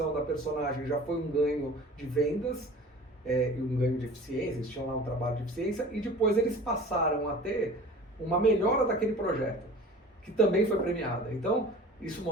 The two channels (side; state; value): both; normal; correlation 0.42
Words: da personagem já foi um ganho de vendas, e um ganho de eficiência, eles tinham lá um trabalho de eficiência, e depois eles passaram a ter uma melhora daquele projeto. que também foi premiada. Então, isso